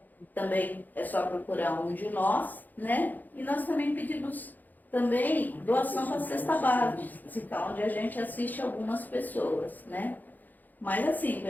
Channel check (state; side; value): late; right; 0.084 ms